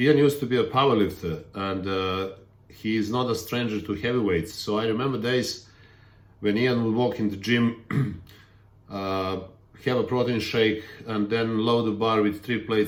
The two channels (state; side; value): identical; both; correlation 1.00